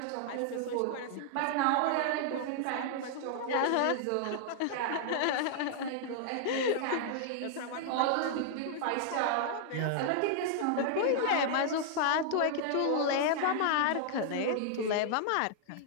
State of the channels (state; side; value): different; both; correlation -0.01